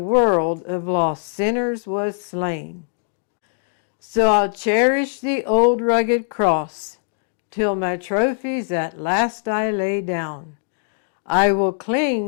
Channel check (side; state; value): right; silent; digital silence